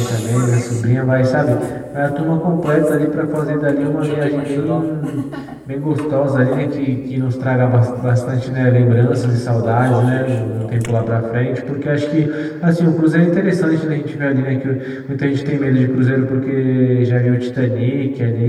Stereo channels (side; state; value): both; identical; correlation 1.00